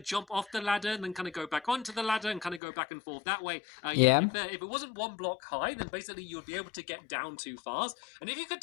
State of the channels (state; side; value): drops out; right; at 2.6 s